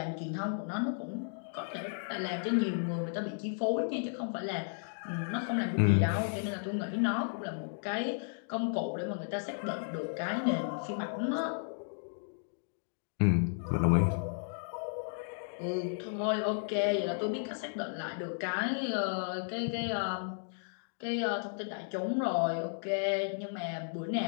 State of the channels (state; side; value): silent; right; digital silence